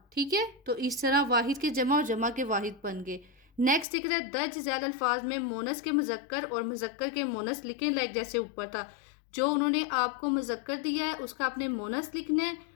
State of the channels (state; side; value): drops out; right; at 3.9 s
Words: ٹھیک ہے، تو اس طرح واحد کے جمع اور جمع کے واحد بن گئے. نیکسٹ دیکھ رہا ہے درج ذیل الفاظ میں مونس کے مذکر اور مذکر کے مونس لکھیں لائک جیسے اوپر تھا. جو انہوں نے آپ کو مذکر دیا ہے اس کا آپ نے مونس لکھنا ہے